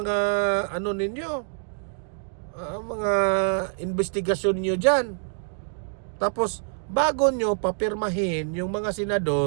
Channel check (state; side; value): silent; left; digital silence